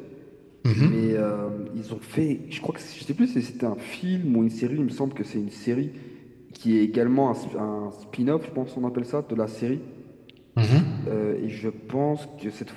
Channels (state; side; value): identical; both; correlation 1.00